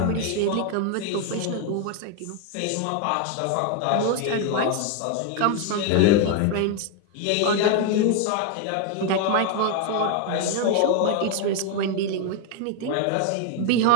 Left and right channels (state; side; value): different; both; correlation 0.01